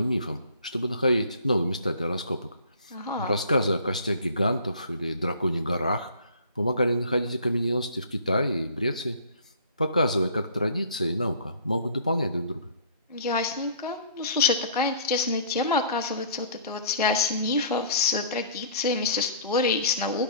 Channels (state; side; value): inverted; both; correlation -0.50